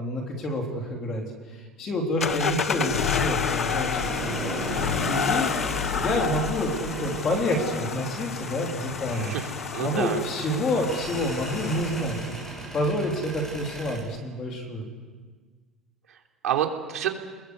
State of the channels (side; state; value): both; normal; correlation 0.37